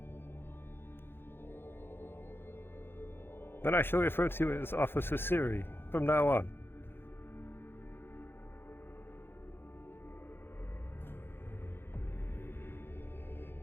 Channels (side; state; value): right; late; 0.10 ms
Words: Then I shall refer to you as Officer Siri from now on.